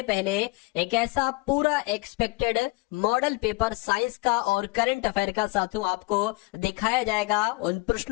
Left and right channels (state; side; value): quieter; right; 24.8 dB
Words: पहले एक ऐसा पूरा एक्सपेक्टेड मॉडल पेपर साइंस का और करंट अफेयर का साथियों आपको दिखाया जाएगा। उन